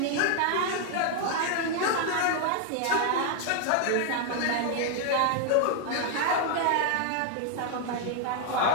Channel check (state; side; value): different; both; correlation 0.00